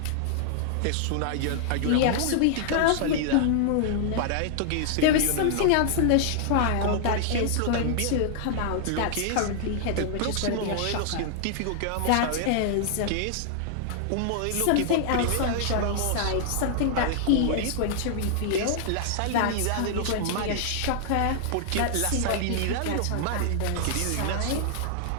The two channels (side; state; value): both; different; correlation -0.01